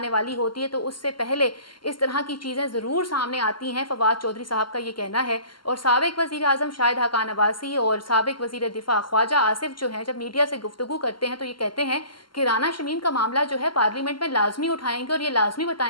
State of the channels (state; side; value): late; right; 0.72 ms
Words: वाली होती है तो उससे पहले इस तरह की चीज़ें ज़रूर सामने आती हैं। फवाद चौधरी साहब का ये कहना है। और साबिक वज़ीर आज़म शाहिद हक़ान अब्बासी और साबिक वज़ीर दिफा ख्वाजा आसिफ जो हैं, जब मीडिया से गुफ्तगू करते हैं तो ये कहते हैं कि राना शमीम का मामला जो है पार्लियामेंट में लाजमी उठाएंगे और ये लाजमी